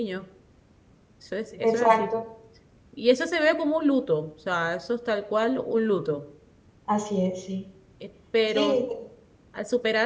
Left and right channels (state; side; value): identical; both; correlation 1.00